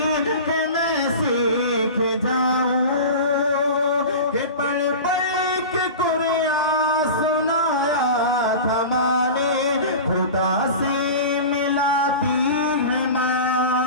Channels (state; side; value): inverted; both; correlation -0.32